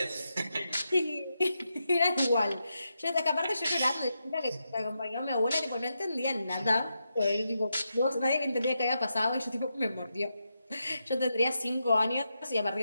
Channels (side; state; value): both; inverted; correlation -0.86